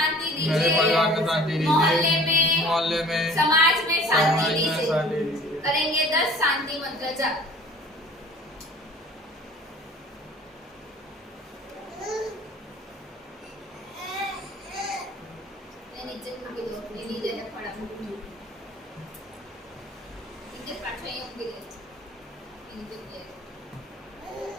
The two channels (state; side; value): normal; both; correlation 0.48